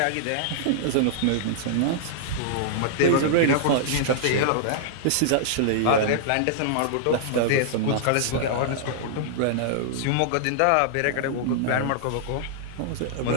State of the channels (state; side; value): different; both; correlation -0.01